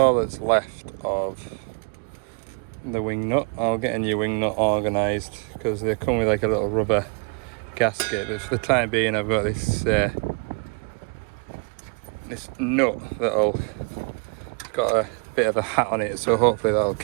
that's left of the wing nut. I'll get a new wing nut organised because they come with like a little rubber gasket, but for the time being I've got this this nut that'll, it's got a bit of a hat on it, so hopefully that'll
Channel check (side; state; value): left; quieter; 37.6 dB